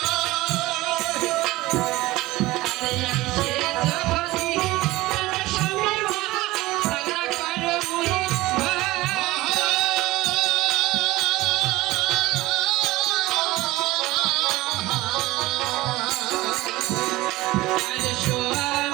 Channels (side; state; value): left; quieter; 18.7 dB